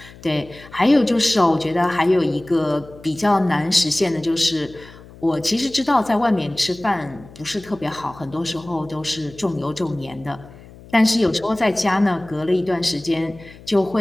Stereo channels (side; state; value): left; noise; hum, 20 dB below the sound